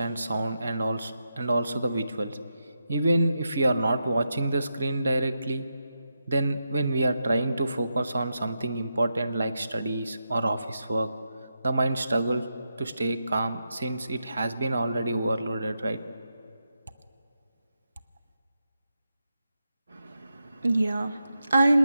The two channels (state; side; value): inverted; both; correlation -0.86